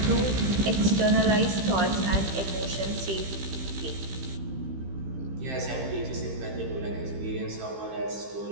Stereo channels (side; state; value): left; late; 15 ms